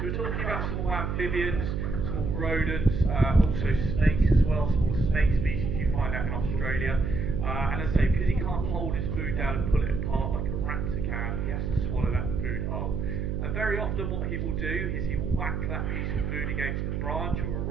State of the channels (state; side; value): noise; right; hum, 2 dB below the sound